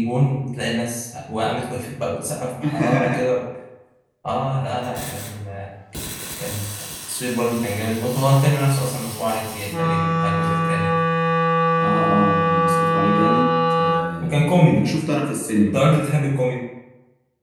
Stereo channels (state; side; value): identical; both; correlation 1.00